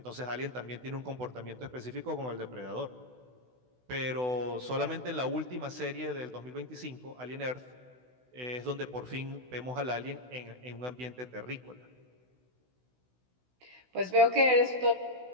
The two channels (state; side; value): late; left; 16 ms